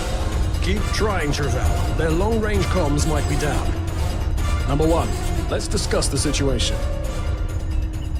Keep trying, Travell. Their long-range comms might be down. Number 1, let's discuss the situation.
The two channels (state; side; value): identical; both; correlation 1.00